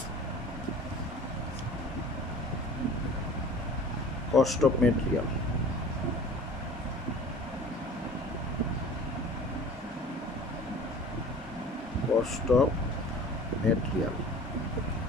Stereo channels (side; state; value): both; normal; correlation 0.43